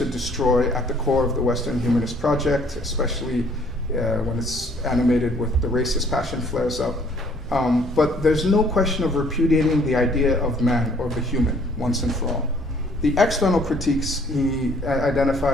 destroy at the core of the Western humanist project, especially when it's animated with the racist passion flares up. But there's no question of repudiating the idea of man or the human once and for all. The external critiques he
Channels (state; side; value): normal; both; correlation 0.60